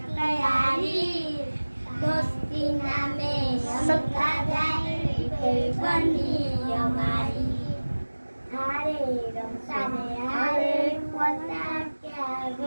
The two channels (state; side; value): inverted; both; correlation -1.00